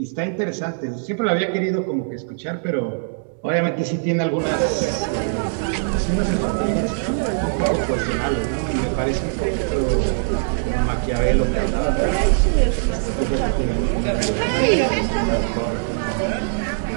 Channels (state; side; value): silent; left; 65 dB below the other